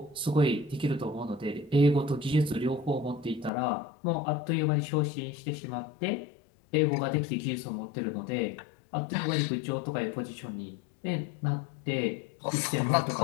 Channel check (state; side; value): drops out; right; at 3.5 s